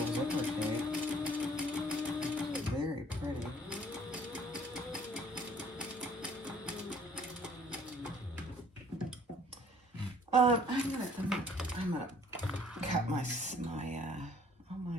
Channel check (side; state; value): both; normal; correlation 0.58